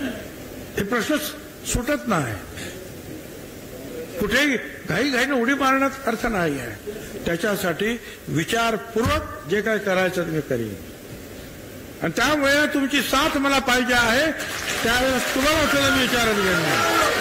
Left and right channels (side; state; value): both; identical; correlation 1.00